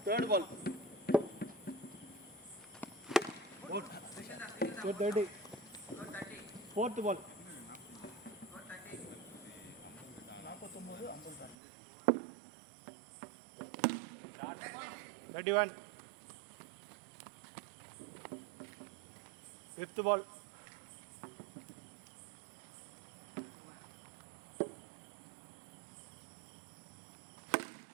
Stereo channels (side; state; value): left; drops out; at 11.6 s